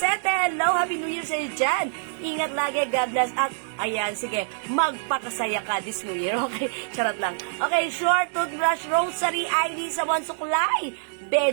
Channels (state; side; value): silent; left; digital silence